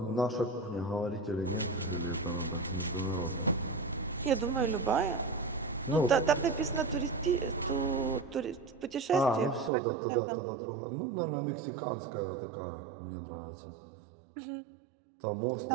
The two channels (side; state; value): left; drops out; at 9.7 s